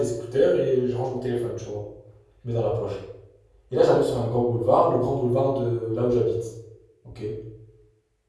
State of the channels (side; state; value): both; identical; correlation 1.00